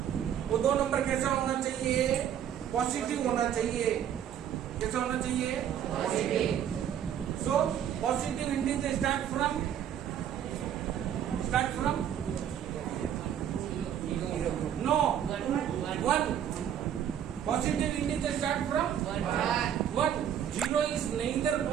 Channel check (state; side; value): quieter; left; 9.6 dB